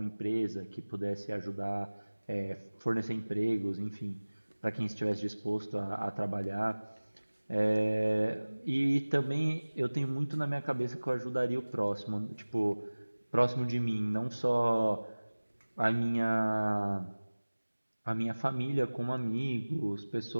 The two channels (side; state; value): both; inverted; correlation -1.00